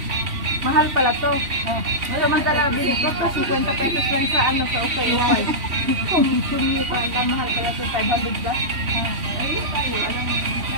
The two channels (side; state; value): left; late; 3.1 ms